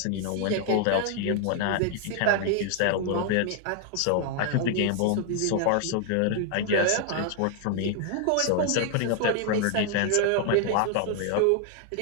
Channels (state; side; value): different; both; correlation 0.00